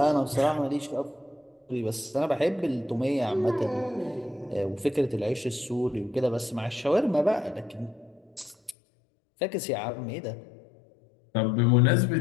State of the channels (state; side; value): drops out; right; at 8.8 s